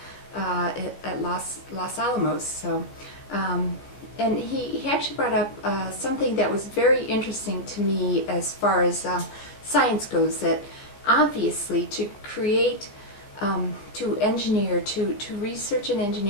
at Los Alamos. So. And he actually brought up something that was very interesting to me as far as science goes, that obviously to create to engineer, to research and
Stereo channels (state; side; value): late; right; 15 ms